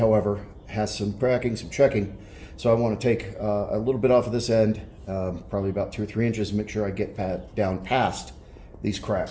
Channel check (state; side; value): identical; both; correlation 1.00